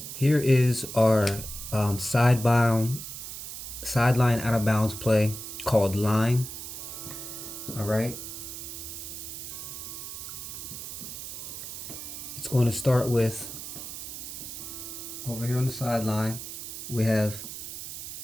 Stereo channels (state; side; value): noise; right; hiss, 9 dB below the sound